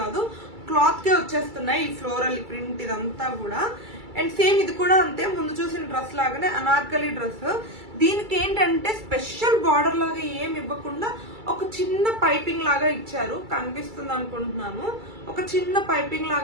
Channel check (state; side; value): late; left; 2.3 ms